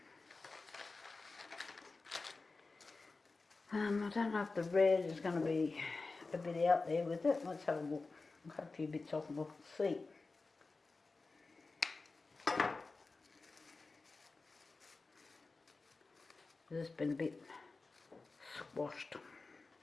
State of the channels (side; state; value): right; quieter; 3.8 dB